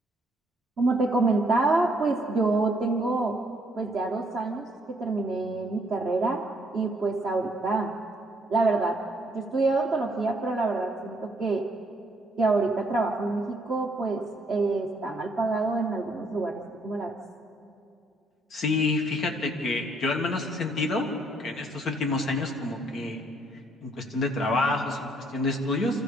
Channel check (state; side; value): normal; both; correlation 0.68